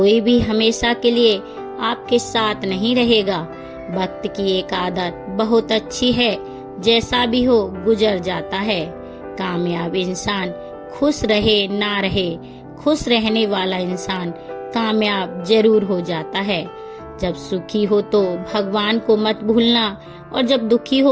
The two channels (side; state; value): both; identical; correlation 1.00